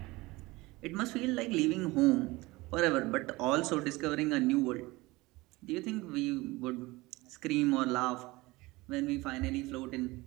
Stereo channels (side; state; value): left; quieter; 21.4 dB